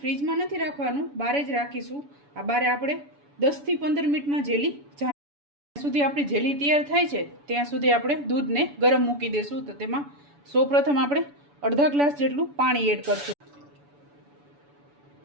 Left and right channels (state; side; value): late; left; 7.0 ms